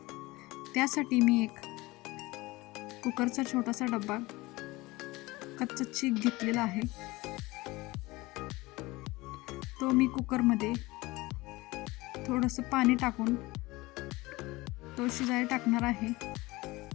त्यासाठी मी एक कुकरचा छोटासा डब्बा कच्चा चीक घेतलेला आहे. तो मी कुकरमध्ये थोडंसं पाणी टाकून तो शिजायला टाकणार आहे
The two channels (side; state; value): right; quieter; 21.1 dB